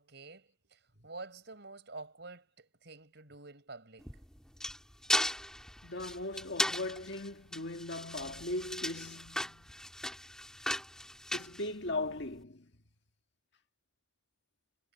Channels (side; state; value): both; normal; correlation 0.42